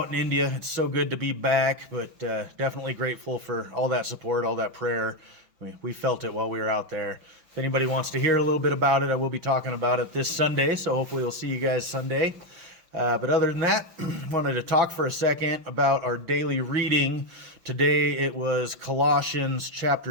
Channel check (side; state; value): left; late; 5.8 ms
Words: in India. It's so good to be back, but definitely grateful for all that support, all that prayer. We felt it while we were out there. If anybody wants to hear a little bit about it, I will be talking about it this Sunday, so hopefully we'll see you guys Sunday. But other than that, wanted to talk for a second about our daily reading. Today it was Colossians